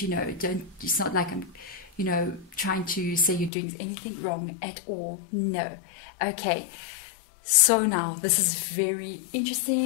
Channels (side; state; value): right; drops out; at 3.5 s